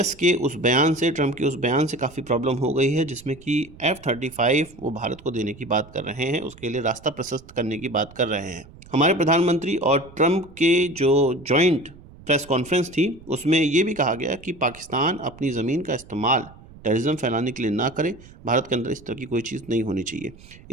के उस बयान से, ट्रंप के उस बयान से काफ़ी प्रॉब्लम हो गई है जिसमें कि F-35 वो भारत को देने की बात कर रहे हैं, उसके लिए रास्ता प्रशस्त करने की बात कर रहे हैं। हमारे प्रधानमंत्री और ट्रंप के जो जॉइंट प्रेस कॉन्फ्रेंस थी उसमें ये भी कहा गया कि पाकिस्तान अपनी ज़मीन का इस्तेमाल टेररिज्म फैलाने के लिए ना करे। भारत के अंदर इस तरह की कोई चीज़ नहीं होनी चाहिए।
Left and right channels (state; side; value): noise; right; rumble, 21 dB below the sound